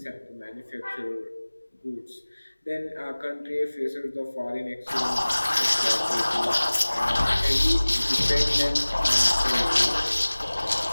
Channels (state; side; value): inverted; both; correlation -1.00